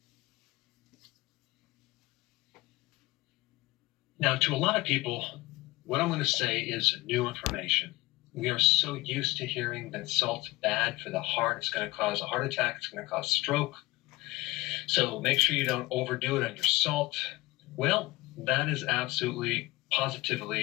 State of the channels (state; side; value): quieter; right; 21.2 dB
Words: Now, to a lot of people, what I'm going to say is new information. We are so used to hearing that salt's bad for the heart. It's going to cause a heart attack. It's going to cause stroke. So make sure you don't overdo it on your salt. Well, that is absolutely,